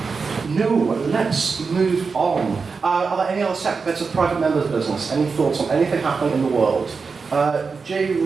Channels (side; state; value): left; quieter; 4.9 dB